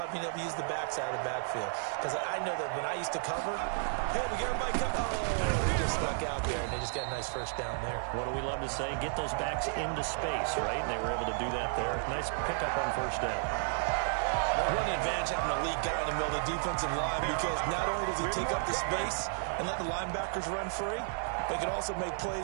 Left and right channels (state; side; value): silent; left; digital silence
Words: being able to use the backside of the backfield. Because I know that when I used to cover, hey, we got everybody cover. Oh, he just stuck out there, and they just got a nice first down there. What do we love to say? Get those backs into space, right? And they were able to do that there. Nice pickup on first down. What an advantage having a lead guy in the middle of the defensive line, because not only does he take up the space and let the linebackers run free, but he can also make